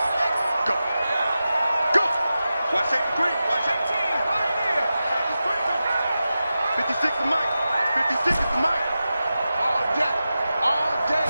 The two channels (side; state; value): both; inverted; correlation -0.93